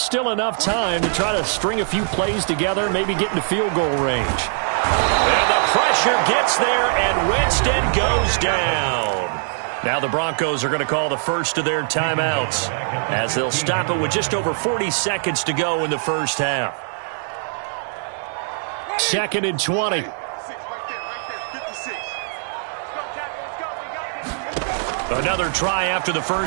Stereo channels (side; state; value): left; silent; digital silence